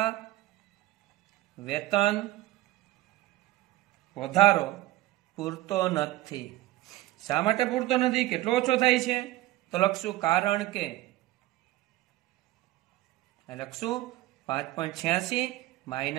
વેતન વધારો પૂરતો નથી. શા માટે પૂરતો નથી? કેટલો ઓછો થાય છે? તો લખશું કારણ કે લખશું 5.86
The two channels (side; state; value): left; quieter; 17.0 dB